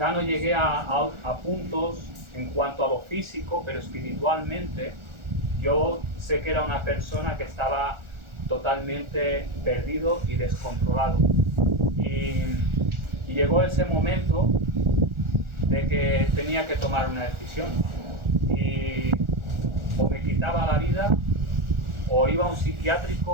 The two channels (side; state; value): left; late; 1.4 ms